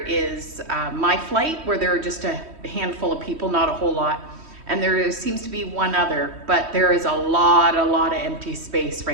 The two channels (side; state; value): left; late; 3.1 ms